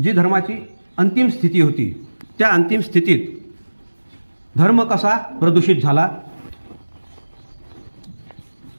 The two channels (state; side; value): inverted; both; correlation -1.00